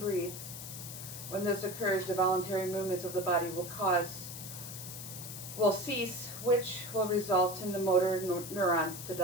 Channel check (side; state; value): left; noise; hiss, 10 dB below the sound